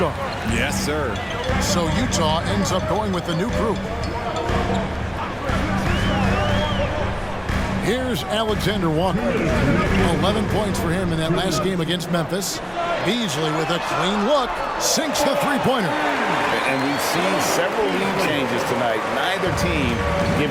Yes, sir. So Utah ends up going with the new group. Here's Alexander Walker. 11 points for him in that last game against Memphis. Beasley with a clean look, sinks the three-pointer. And we've seen several lead changes tonight. Neither team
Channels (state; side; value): identical; both; correlation 1.00